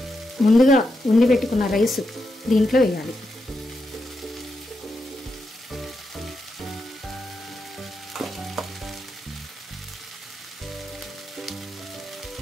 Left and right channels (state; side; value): normal; both; correlation 0.85